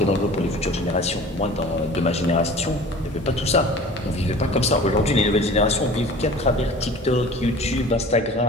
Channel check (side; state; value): both; normal; correlation 0.43